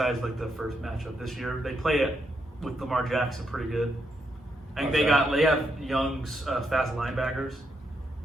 like the first matchup this year, they play it with Lamar Jackson pretty good. I think they have young, fast linebackers,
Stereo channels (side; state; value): both; normal; correlation 0.80